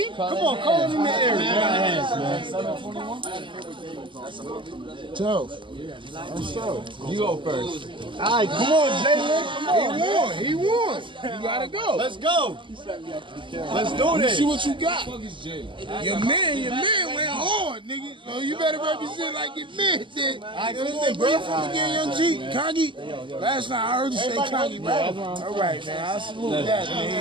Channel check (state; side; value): late; left; 0.24 ms